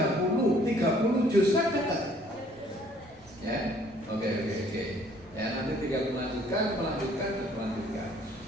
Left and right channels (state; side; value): noise; right; rumble, 25 dB below the sound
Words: juz kan dekat. Ya, oke. Ya, nanti tinggal melanjutkan.